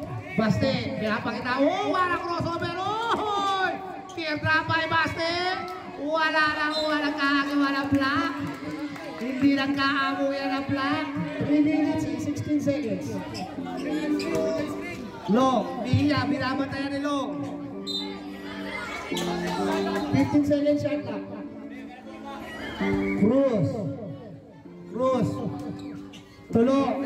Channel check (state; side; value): identical; both; correlation 1.00